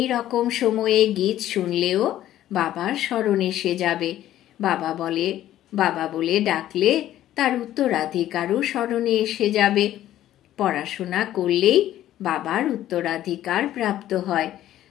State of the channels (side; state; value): right; quieter; 12.9 dB